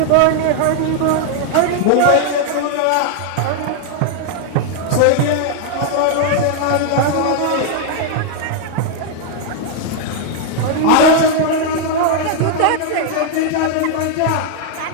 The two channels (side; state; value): both; different; correlation 0.00